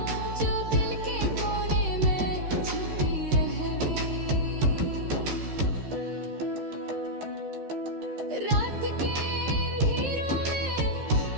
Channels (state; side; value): late; left; 13 ms